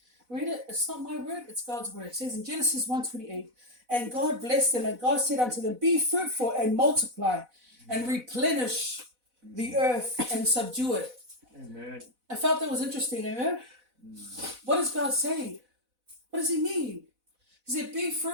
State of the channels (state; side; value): late; left; 4.0 ms